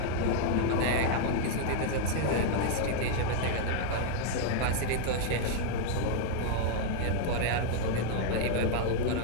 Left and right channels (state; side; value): different; both; correlation 0.00